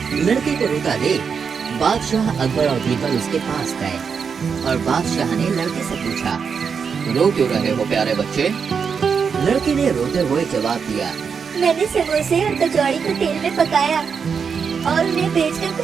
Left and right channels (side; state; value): left; quieter; 6.2 dB